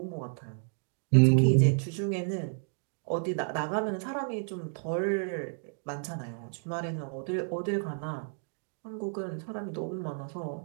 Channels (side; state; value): left; silent; 57 dB below the other